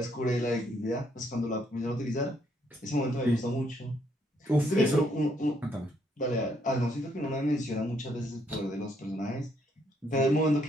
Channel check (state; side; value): normal; both; correlation 0.72